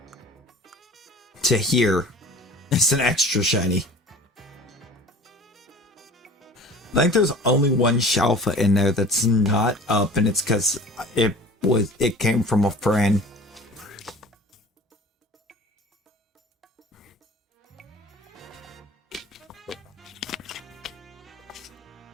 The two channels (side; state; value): both; normal; correlation 0.43